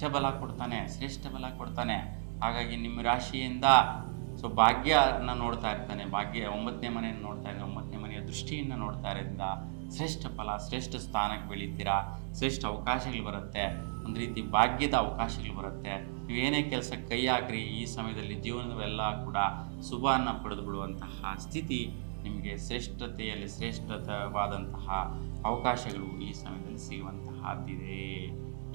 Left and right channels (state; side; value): silent; left; 55 dB below the other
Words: ಬಲ ಕೊಡ್ತಾನೆ, ಶ್ರೇಷ್ಠ ಬಲ ಕೊಡ್ತಾನೆ. ಹಾಗಾಗಿ ನಿಮ್ಮ ರಾಶಿಯಿಂದ ಭಾಗ್ಯನ ನೋಡ್ತಾ ಇರ್ತಾನೆ, ಭಾಗ್ಯ 9ನೇ ಮನೆಯನ್ನು ನೋಡ್ತಾ ಇದ್ದಾನೆ, 9ನೇ ಮನೆಯ ದೃಷ್ಟಿಯನ್ನು ನೋಡ್ತಾ ಇರೋದ್ರಿಂದ ಶ್ರೇಷ್ಠ ಫಲ, ಶ್ರೇಷ್ಠ ಸ್ಥಾನಕ್ಕೆ ಬೆಳೀತೀರಾ, ಶ್ರೇಷ್ಠ ಅವಕಾಶಗಳು ಬರುತ್ತೆ, ಒಂದು ರೀತಿ ಭಾಗ್ಯದ ಅವಕಾಶಗಳು ಬರುತ್ತೆ. ನೀವೇನೇ ಕೆಲಸ ಕೈ ಹಾಕ್ರಿ, ಈ ಸಮಯದಲ್ಲಿ ಜೀವನವೆಲ್ಲ ಕೂಡ ಶುಭವನ್ನು ಪಡೆದು ಬಿಡುವಂತಹ ಸ್ಥಿತಿ ನಿಮಗೆ ಶ್ರೇಷ್ಠತೆಯಲ್ಲಿ ಶ್ರೇಷ್ಠವಾದಂತಹ ಅವಕಾಶಗಳು ಈ ಸಮಯದಲ್ಲಿ ಸಿಗುವಂತಹದ್ದಿದೆ.